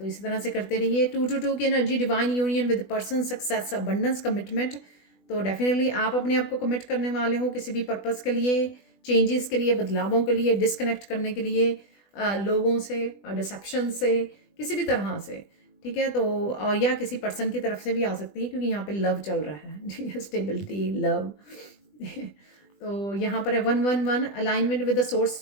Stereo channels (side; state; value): right; late; 20 ms